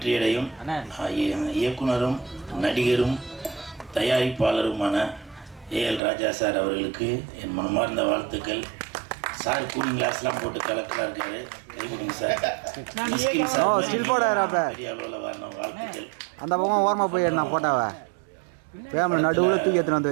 இயக்குனரும் நடிகரும் தயாரிப்பாளருமான ஏஎல் ராஜா சார் அவர்களுக்கு என் மனமார்ந்த வாழ்த்துக்கள். சார் கூலிங் கிளாஸ்லாம் போட்டு கலக்கலாக இருக்காரு. கைவிடுங்க சார். பெரிய அளவில் வரணும். வாழ்த்துக்கள். அந்த பக்கம் ஓரமாக போய் நான் போட்டாவா கேமரா நடுவில் தூக்கி எடுத்துன்னு வந்து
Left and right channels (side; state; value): left; drops out; at 6.0 s